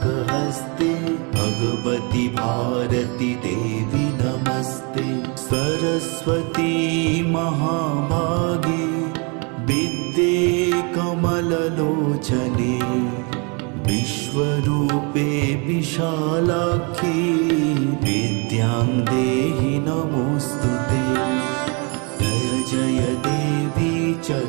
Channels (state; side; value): quieter; left; 33.2 dB